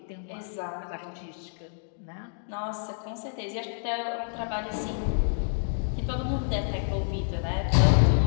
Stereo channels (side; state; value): right; silent; digital silence